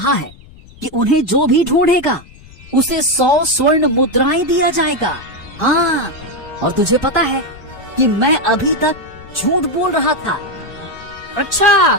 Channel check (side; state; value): left; noise; rumble, 22 dB below the sound